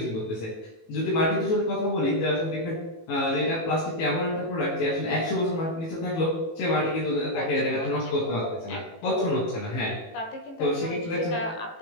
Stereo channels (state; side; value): late; right; 18 ms